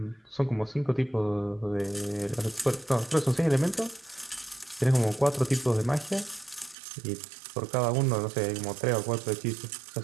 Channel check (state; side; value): drops out; left; at 6.8 s